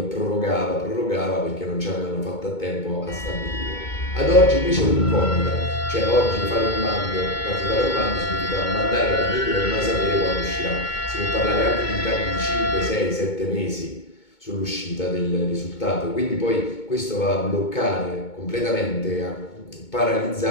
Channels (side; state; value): right; late; 2.2 ms